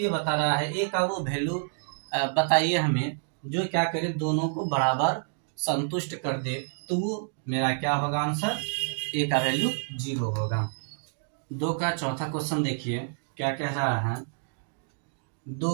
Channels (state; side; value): silent; left; digital silence